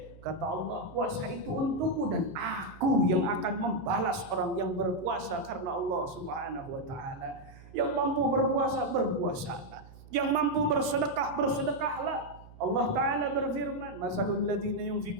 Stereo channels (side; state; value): right; noise; hum, 19 dB below the sound